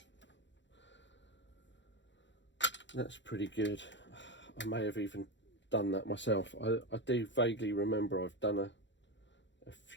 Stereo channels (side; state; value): right; late; 0.53 ms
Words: that's pretty good. I may have even done that myself. I do vaguely remember I've done a